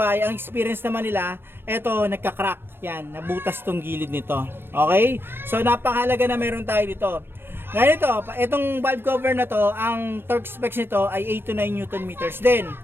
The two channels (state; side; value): late; left; 0.10 ms